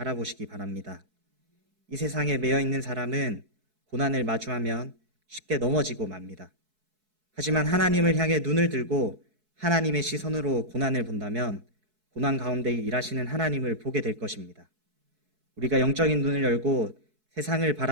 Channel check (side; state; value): left; late; 4.6 ms